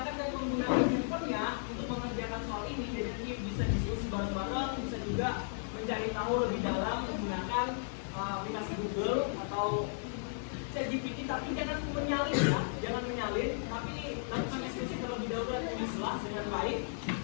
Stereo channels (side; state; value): right; silent; 55 dB below the other